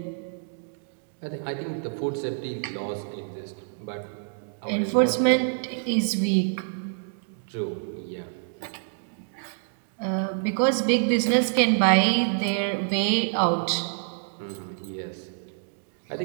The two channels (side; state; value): left; silent; digital silence